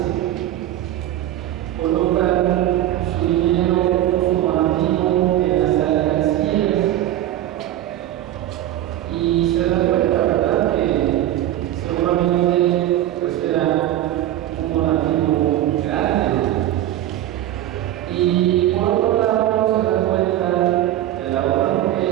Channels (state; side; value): quieter; left; 13.2 dB